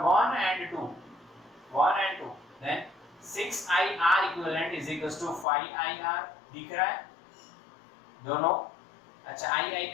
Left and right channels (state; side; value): drops out; right; at 5.5 s